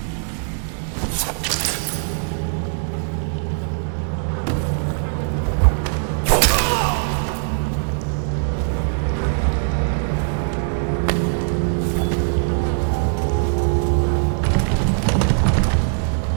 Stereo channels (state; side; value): silent; left; digital silence